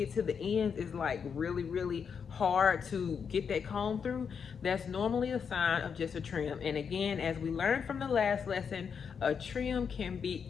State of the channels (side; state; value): right; quieter; 6.6 dB